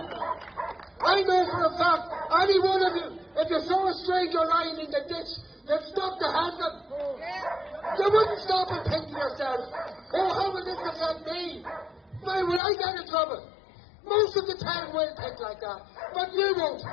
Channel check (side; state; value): right; drops out; at 12.6 s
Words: I know for a fact, any one of you, if you saw a stranger lying in the ditch, you'd stop to help them. You wouldn't stop and think to yourself, oh, how will this affect me? Why will I get in trouble? Most of the town will think like that, but you won't,